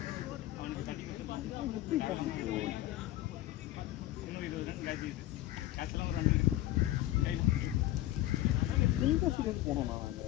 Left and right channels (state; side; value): quieter; right; 15.0 dB